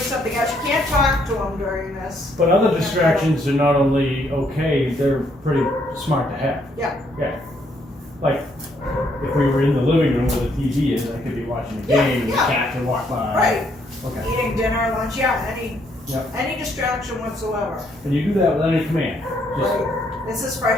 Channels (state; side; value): normal; both; correlation 0.71